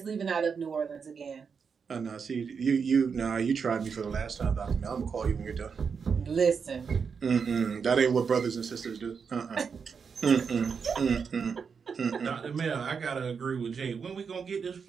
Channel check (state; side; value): quieter; left; 6.0 dB